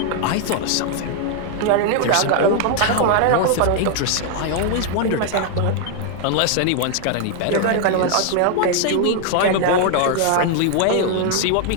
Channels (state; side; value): different; both; correlation 0.00